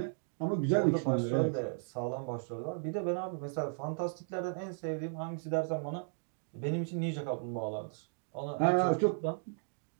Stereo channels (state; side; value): silent; left; digital silence